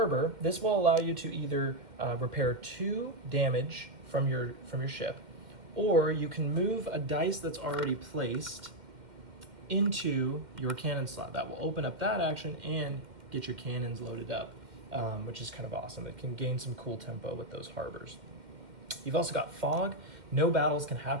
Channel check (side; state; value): left; late; 2.1 ms